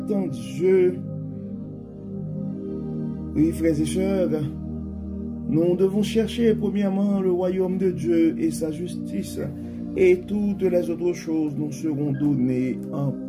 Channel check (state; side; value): identical; both; correlation 1.00